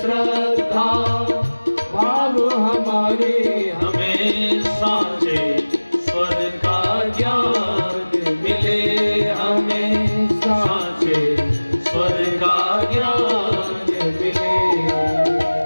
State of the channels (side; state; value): both; inverted; correlation -1.00